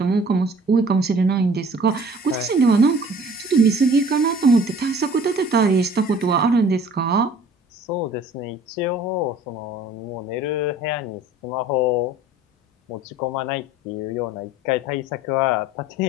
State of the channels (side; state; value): both; normal; correlation 0.50